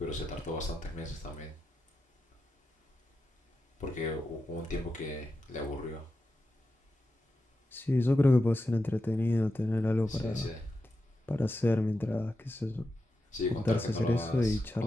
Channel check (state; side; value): normal; both; correlation 0.89